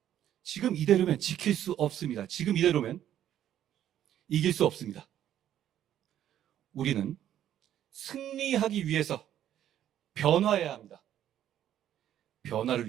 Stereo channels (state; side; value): quieter; left; 11.1 dB